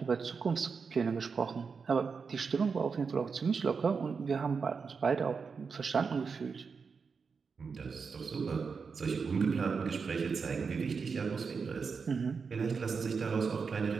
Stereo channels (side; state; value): left; quieter; 5.4 dB